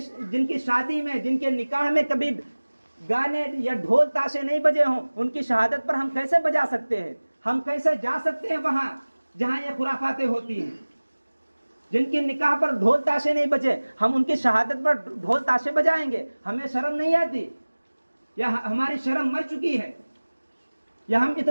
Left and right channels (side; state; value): both; inverted; correlation -1.00